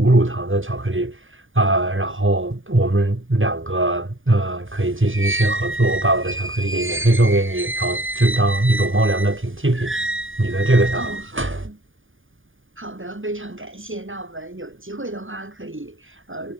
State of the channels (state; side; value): late; left; 0.58 ms